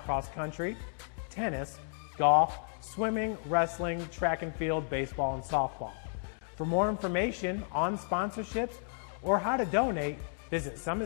cross country, tennis, golf, swimming, wrestling, track and field, baseball, and softball. For more information on sponsorships or how to donate, visit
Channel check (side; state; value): right; silent; 56 dB below the other